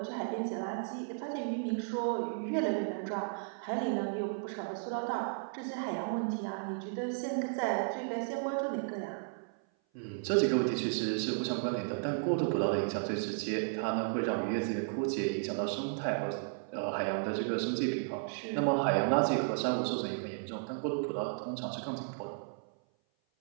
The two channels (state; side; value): silent; left; 55 dB below the other